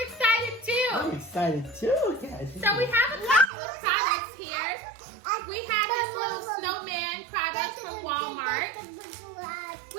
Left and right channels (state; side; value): drops out; left; at 3.5 s